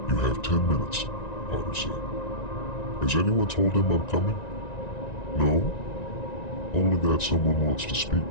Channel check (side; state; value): right; late; 1.9 ms